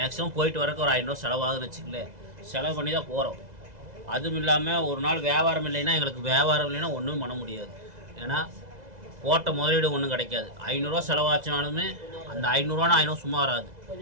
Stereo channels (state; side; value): late; left; 2.0 ms